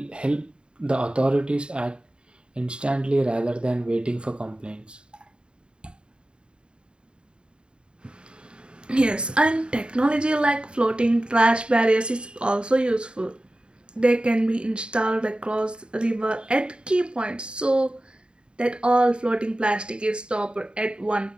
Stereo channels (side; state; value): left; late; 0.052 ms